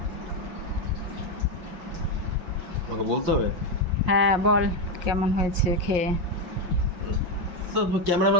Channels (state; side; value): late; left; 5.6 ms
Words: আমাকে বলতে হবে। হ্যাঁ বল, কেমন হয়েছে খেয়ে? তো